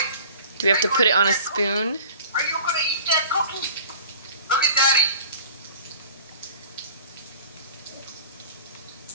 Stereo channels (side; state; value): both; inverted; correlation -0.44